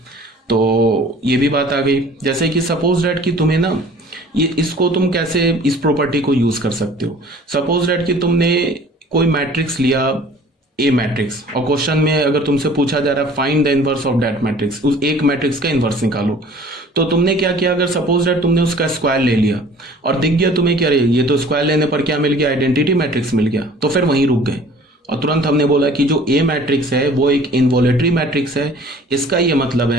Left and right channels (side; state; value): both; normal; correlation 0.49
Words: तो ये भी बात आ गई। जैसे कि सपोज दैट कि तुम्हें ना ये इसको तुम कैसे इस प्रॉपर्टी को यूज कर सकते हो। सपोज दैट कि तुमने कोई मैट्रिक्स लिया, ए मैट्रिक्स, और क्वेश्चन में अगर तुमसे पूछा जा रहा है find the inverse of that matrix, उस एक मैट्रिक्स का इनवर्स निकालो, तो तुमने क्या किया? अगर सपोज दैट तुमने उसका स्क्वायर ले लिया और दिख गया तुम्हें क्या, ये तो स्क्वायर लेने पर क्या मिल गया? आइडेंटिटी मैट्रिक्स मिल गया, तो फिर वहीं रुक गए। और तुरंत हमने बोला कि जो ए मैट्रिक्स है वो एक इनवॉलेटरी मैट्रिक्स है। इसका ये मतलब